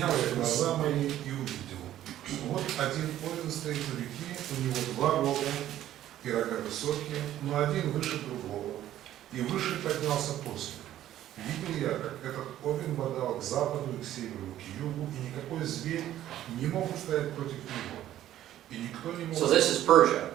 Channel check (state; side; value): quieter; left; 12.6 dB